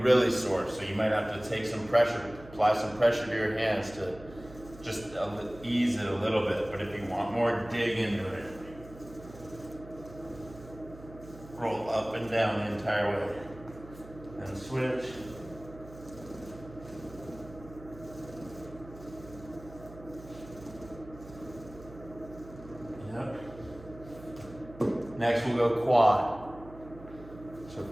sore, so you might have to take some pressure, apply some pressure to your hands to just ease it a little bit. But if you want more, dig into it. Roll up and down the entire way. And switch. Yep. Next we'll go quad. So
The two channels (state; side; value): noise; right; hum, 18 dB below the sound